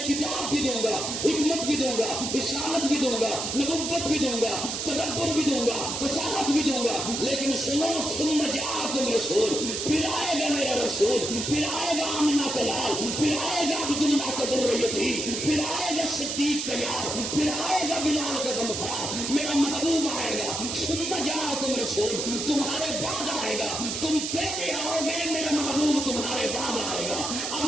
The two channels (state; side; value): noise; right; hiss, 3 dB below the sound